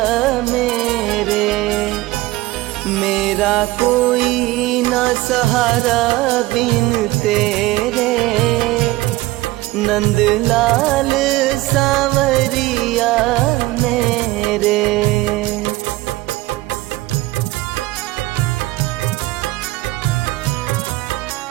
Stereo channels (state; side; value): quieter; left; 18.5 dB